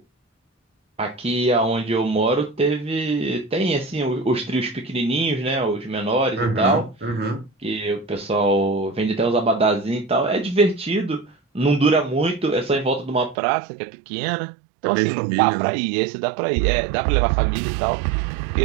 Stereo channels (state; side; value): drops out; left; at 13.4 s